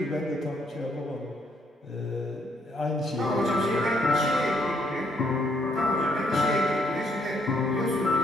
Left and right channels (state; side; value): normal; both; correlation 0.71